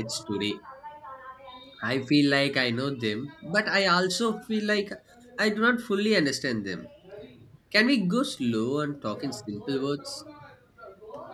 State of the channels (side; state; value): both; identical; correlation 1.00